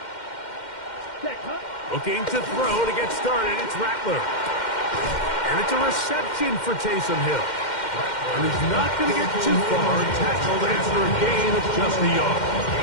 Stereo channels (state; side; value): late; right; 2.1 ms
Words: Looking to throw to get started, it's Rattler. And it's a reception for Taysom Hill. And he's not going to get too far, tackled after a gain of just a yard.